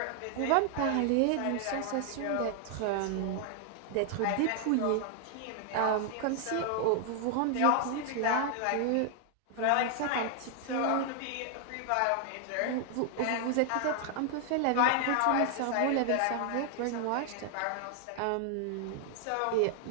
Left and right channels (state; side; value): different; both; correlation 0.00